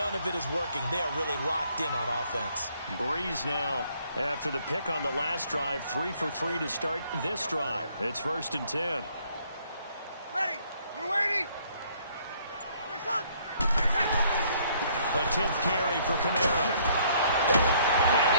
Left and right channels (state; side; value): inverted; both; correlation -0.64